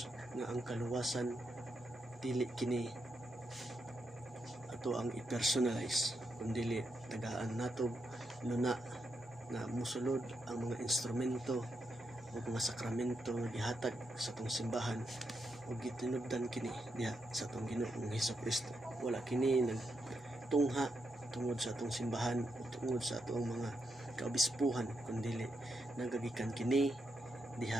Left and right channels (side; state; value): both; normal; correlation 0.83